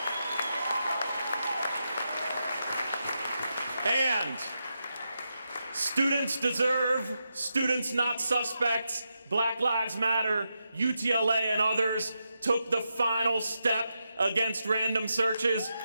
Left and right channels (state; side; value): inverted; both; correlation -0.86